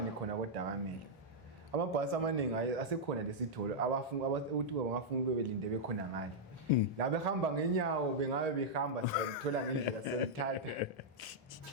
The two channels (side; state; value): both; normal; correlation -0.07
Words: khona koDakamele amabhasi amaningi asekhona lesitholo ukuthi bangafuna bebelinde bekhona ngale la behamba ngenyawo bengabe behamba sithola ngendlela selithatha